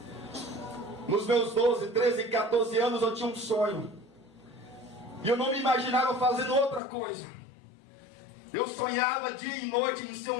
Nos meus 12, 13, 14 anos eu tinha um sonho. E eu não me imaginava fazendo outra coisa. Eu sonhava dia e noite em ser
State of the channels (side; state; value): right; drops out; at 6.8 s